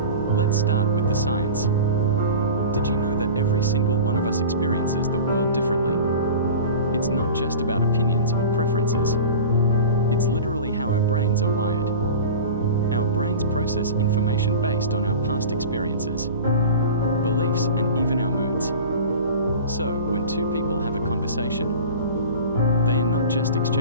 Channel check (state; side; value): inverted; both; correlation -0.35